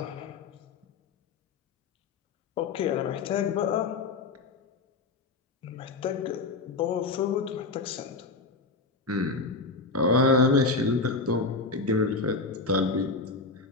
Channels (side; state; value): right; quieter; 3.7 dB